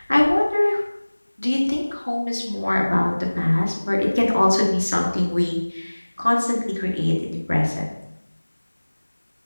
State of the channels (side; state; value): both; inverted; correlation -1.00